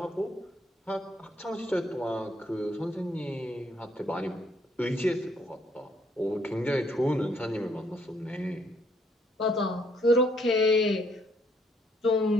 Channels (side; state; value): both; normal; correlation 0.68